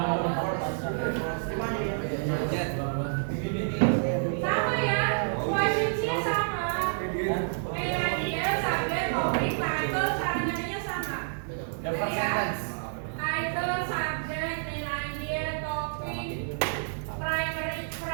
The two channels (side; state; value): left; silent; digital silence